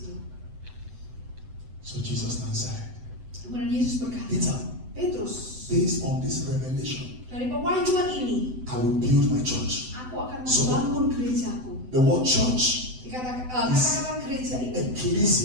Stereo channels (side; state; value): left; late; 7.9 ms